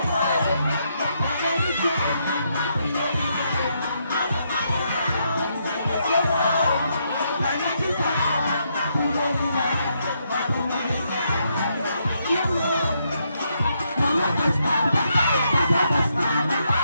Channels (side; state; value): both; inverted; correlation -0.77